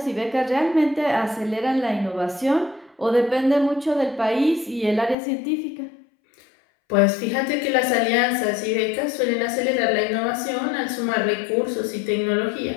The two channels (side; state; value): right; drops out; at 5.2 s